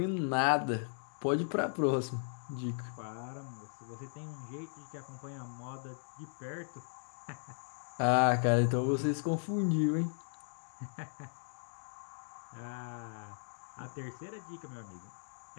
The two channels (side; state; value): right; silent; digital silence